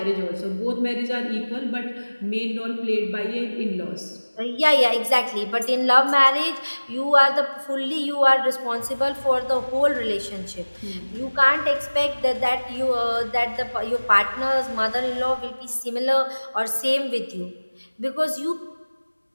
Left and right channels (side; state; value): both; inverted; correlation -1.00